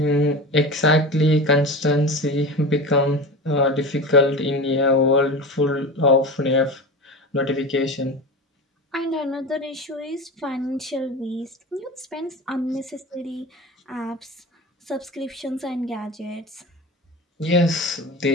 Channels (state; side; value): normal; both; correlation 0.30